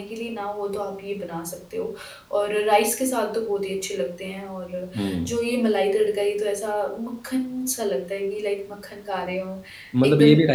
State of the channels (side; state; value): both; identical; correlation 1.00